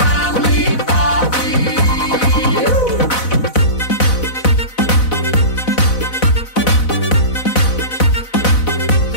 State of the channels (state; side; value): late; right; 4.0 ms